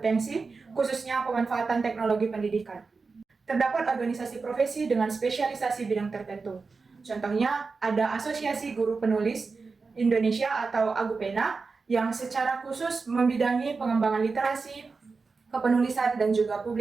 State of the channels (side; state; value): left; quieter; 4.4 dB